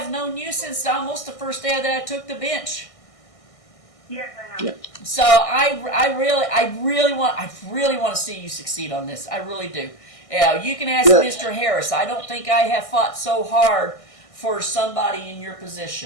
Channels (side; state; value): right; late; 1.6 ms